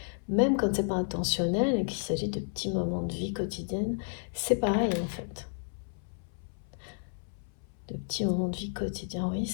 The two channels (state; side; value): silent; right; 57 dB below the other